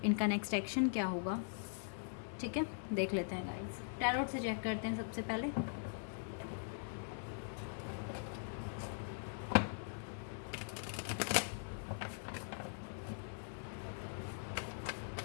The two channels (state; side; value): silent; right; digital silence